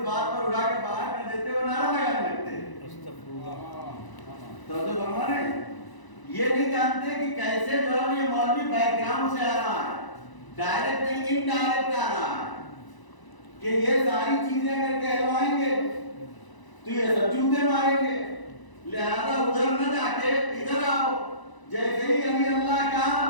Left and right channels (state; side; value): late; right; 1.0 ms